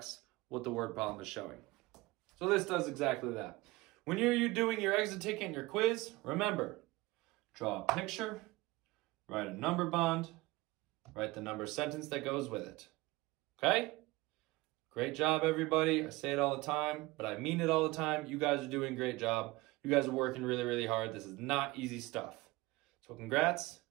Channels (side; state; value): left; quieter; 21.1 dB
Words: what the word problem is showing. So this does exactly that. When you're doing your exit ticket and your quiz, remember, draw a picture, write a number bond, write the number sentence that goes with it. Okay? Great job, everybody. I say it all the time, but I mean it all the time. You guys are doing a great job. You guys are working really, really hard. This is not easy stuff. So congrats.